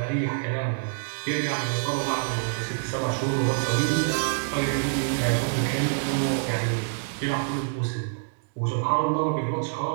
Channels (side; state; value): left; silent; digital silence